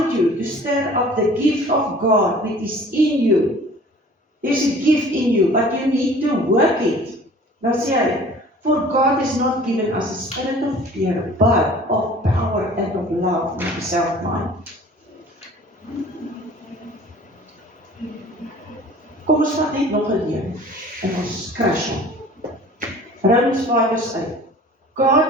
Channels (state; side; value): normal; both; correlation 0.47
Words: you to stir up the gift of God which is in you. There's a gift in you, but you need to work it. Dan sê hy, for God has not given us a spirit of fear, but of power and of love and of self-mind. Kom ons vat net nog 'n leuen en ons crash hom. Romans 5 vers 8.